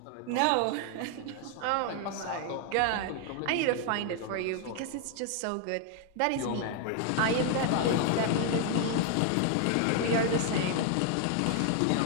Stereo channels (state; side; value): different; both; correlation 0.00